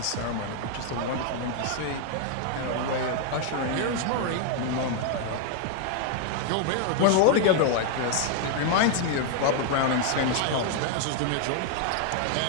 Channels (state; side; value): different; both; correlation 0.00